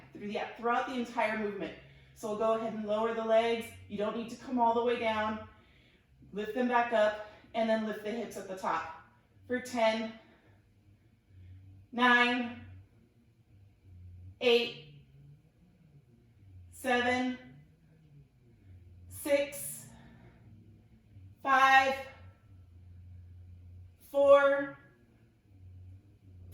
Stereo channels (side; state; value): both; identical; correlation 1.00